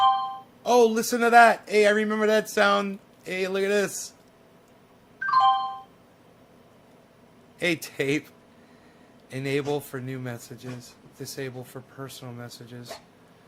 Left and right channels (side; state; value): both; identical; correlation 1.00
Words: Oh, listen to that. Hey, I remember that sound. Hey, look at this. Hey, tape. Enable for new messages. Disable for personal messages.